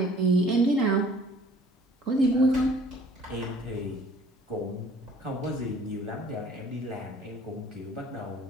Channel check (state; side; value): normal; both; correlation 0.53